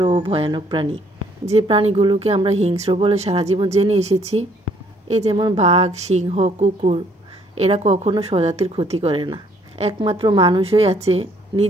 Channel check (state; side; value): normal; both; correlation 0.64